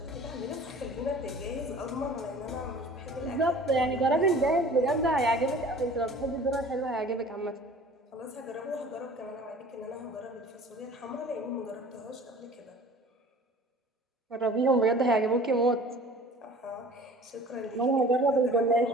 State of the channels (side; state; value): both; normal; correlation 0.46